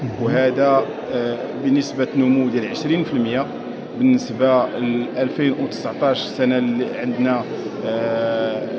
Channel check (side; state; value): both; identical; correlation 1.00